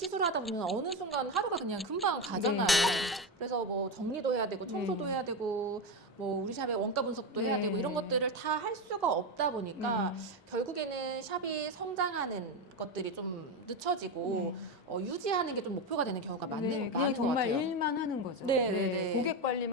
보면 어느 순간 하루가 그냥 금방 가잖아요. 네. 그래서 뭐 정리도 해야 되고 청소도 해야 되고 뭐 우리 샵의 원가 분석도 해야 네. 되고 이런 것들을 다 할 수가 없다 보니까 결국에는 샵이 성장하는 것들이 좀 늦춰지고 유지하는 게 좀 목표가 되는 경우가 네, 많은 그냥 것 정말 같아요. 일만 하는 거죠. 네, 네, 네. 고객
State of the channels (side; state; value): both; normal; correlation 0.14